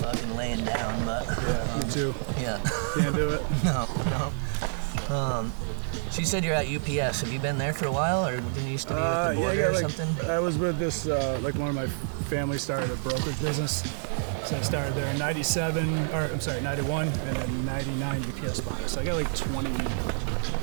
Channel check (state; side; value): silent; left; digital silence